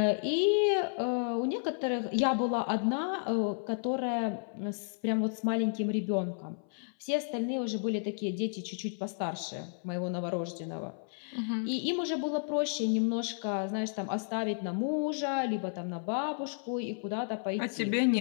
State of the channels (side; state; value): right; silent; 56 dB below the other